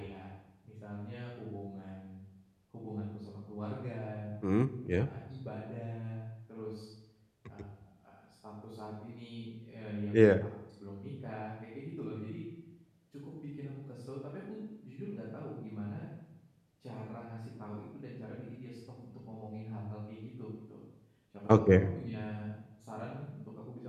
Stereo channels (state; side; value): identical; both; correlation 1.00